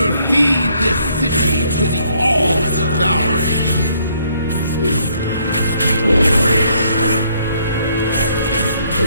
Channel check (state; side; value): inverted; both; correlation -0.68